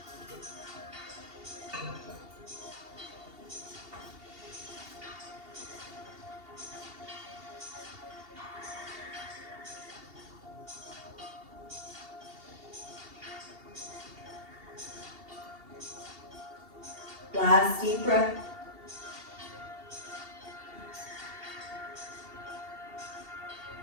Last deep breath.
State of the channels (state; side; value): late; left; 2.7 ms